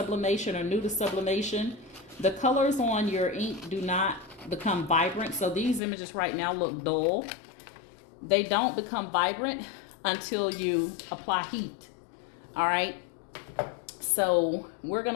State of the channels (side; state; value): right; drops out; at 5.8 s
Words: or new to sublimation, the colors on your ink do not become vibrant. So these images right now look dull. They don't become vibrant until you apply heat. All right. So we're going